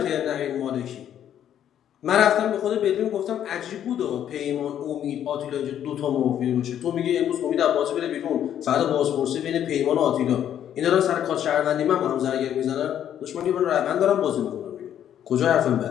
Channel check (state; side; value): quieter; right; 10.2 dB